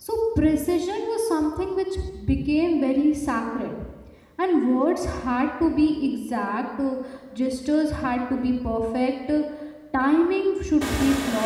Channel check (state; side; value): identical; both; correlation 1.00